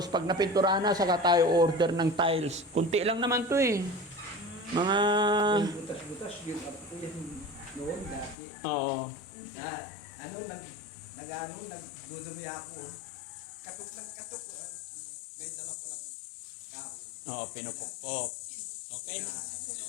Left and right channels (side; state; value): right; drops out; at 8.3 s